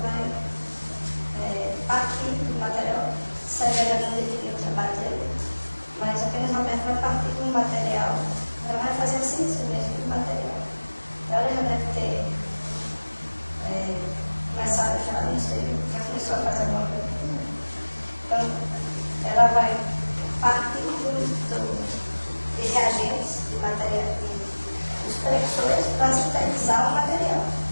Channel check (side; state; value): both; inverted; correlation -1.00